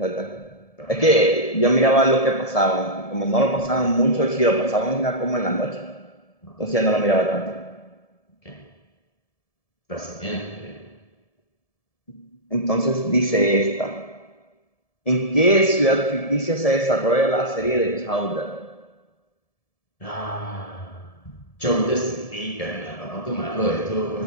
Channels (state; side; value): late; right; 1.7 ms